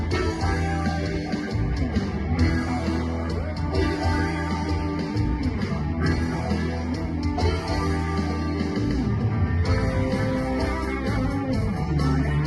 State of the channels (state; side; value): identical; both; correlation 1.00